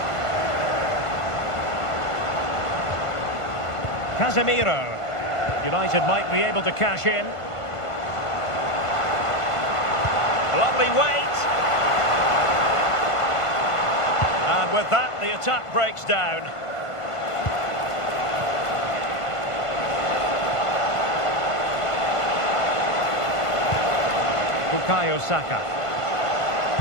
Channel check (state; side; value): late; right; 1.5 ms